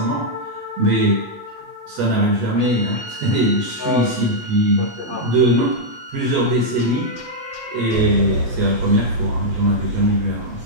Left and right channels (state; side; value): late; left; 8.3 ms